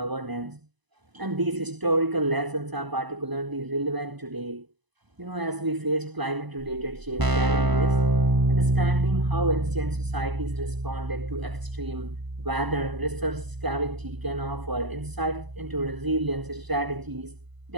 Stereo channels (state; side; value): late; left; 1.0 ms